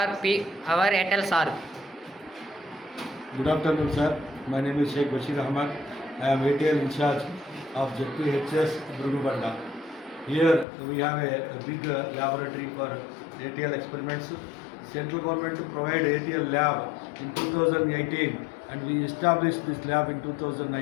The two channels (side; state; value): right; drops out; at 10.7 s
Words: Airtel sir. Good afternoon, sir. My name is Sheikh Bashir Ahmad. I am ATL in charge of ZPHS Brugubanda. Here we have a big laboratory for ATL experiments. Central government provide ATL lab in 2018 and we established this lab in